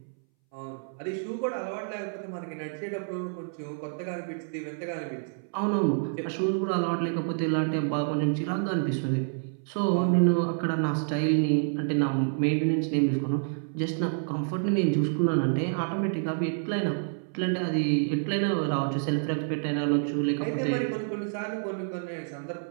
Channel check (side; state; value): left; silent; 59 dB below the other